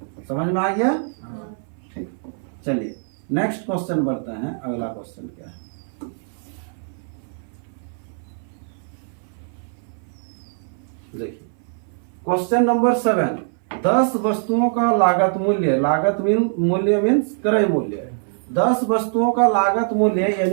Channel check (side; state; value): left; silent; 58 dB below the other